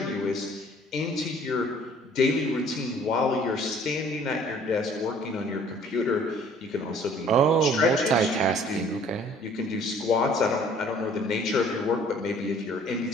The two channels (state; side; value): normal; both; correlation 0.55